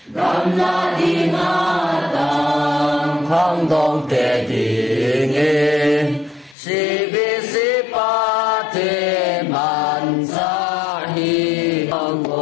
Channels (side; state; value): right; drops out; at 6.6 s